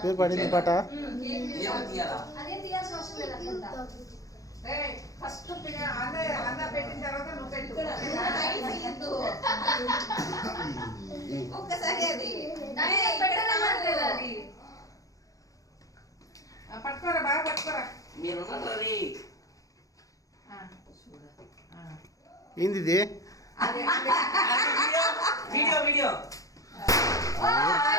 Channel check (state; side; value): late; right; 0.17 ms